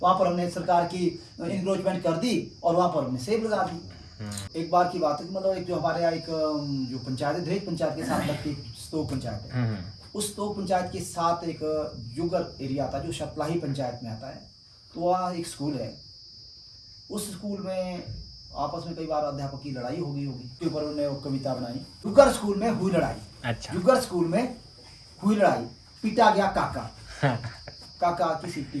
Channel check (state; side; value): identical; both; correlation 1.00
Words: वहाँ पर हमने सरकार की इंक्रोचमेंट कर दी, और वहाँ पर हमने सेब लगा दी। एक बार की बात है कि मतलब एक जो हमारे यहाँ एक जो पंचायत है, दहेज पंचायत के साथ लगती स्तोक पंचायत है, उस स्तोक पंचायत के साथ एक जुगर एरिया आता है जो शतलाही पंचायत में आता है। तो वहाँ एक स्कूल है, उस स्कूल में आपस में कई बार अध्यापक की लड़ाई हो गई होगी, के ऊपर उन्होंने वो कविता बनाई, जुगर स्कूल में हुई लड़ाई। अच्छा। जुगर स्कूल में हुई लड़ाई, पीटा गया काका। काका किसी